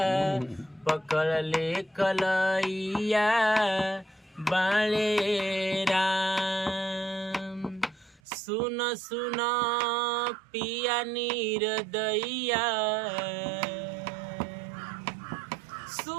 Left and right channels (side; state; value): left; drops out; at 8.2 s